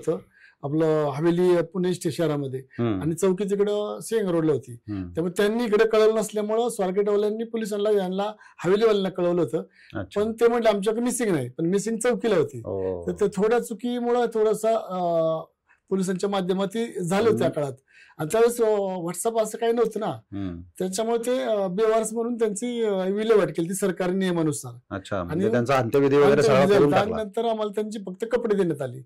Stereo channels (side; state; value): both; identical; correlation 1.00